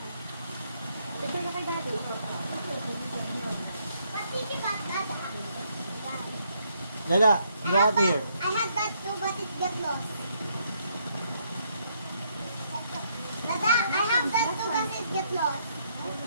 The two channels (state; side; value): inverted; both; correlation -0.72